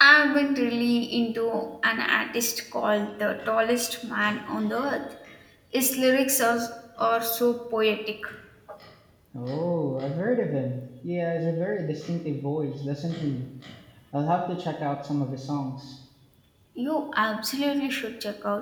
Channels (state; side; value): identical; both; correlation 1.00